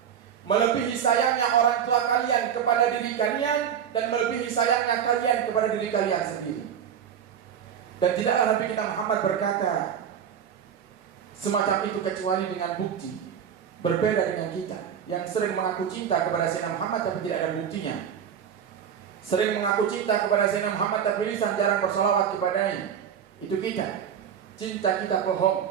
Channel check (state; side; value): quieter; left; 8.5 dB